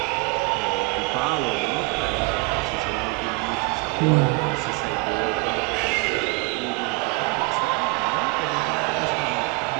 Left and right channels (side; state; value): left; quieter; 26.4 dB